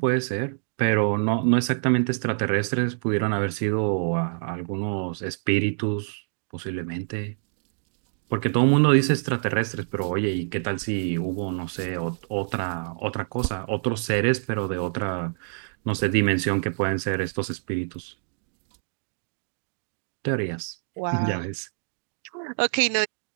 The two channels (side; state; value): left; silent; digital silence